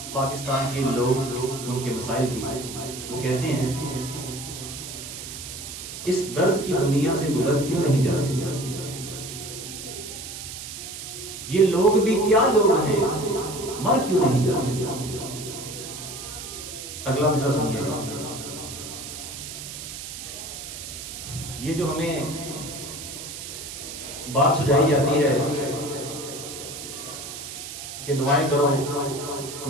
پاکستان کے لوگ ان کے مسائل کی۔ وہ کہتے ہیں، اس درد کی دنیا سے گزر کیوں نہیں جاتے؟ یہ لوگ بھی کیا لوگ ہیں، مر کیوں نہیں جاتے؟ اگلا مصرع سنیے گا۔ یہ جو ہمیں بات سجائی جاتی ہے کہ دعائیں کرو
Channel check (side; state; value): right; noise; hiss, 9 dB below the sound